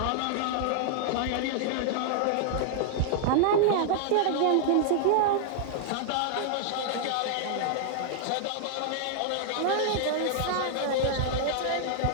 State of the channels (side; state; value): both; different; correlation -0.01